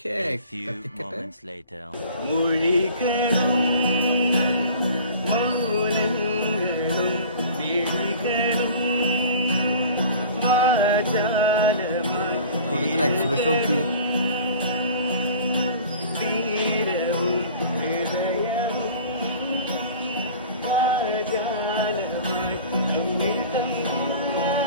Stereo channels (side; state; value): both; inverted; correlation -0.44